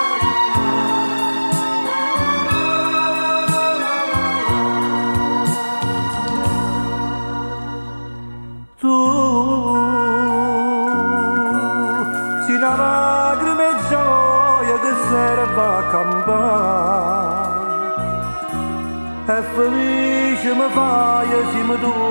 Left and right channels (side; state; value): both; inverted; correlation -1.00